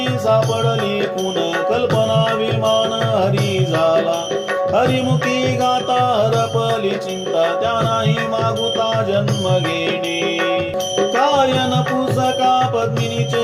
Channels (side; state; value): both; identical; correlation 1.00